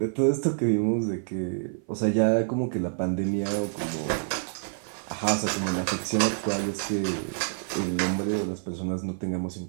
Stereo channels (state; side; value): silent; left; 55 dB below the other